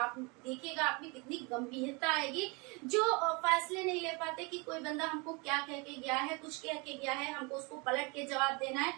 देखिएगा आप में कितनी गंभीरता आएगी। जो फैसले नहीं ले पाते कि कोई बंदा हमको क्या कह के गया है, कुछ कह के गया है, हमको उसको पलट के जवाब देना है,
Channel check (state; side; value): quieter; left; 29.3 dB